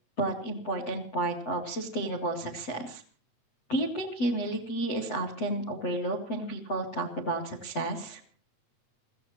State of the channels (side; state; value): right; late; 8.0 ms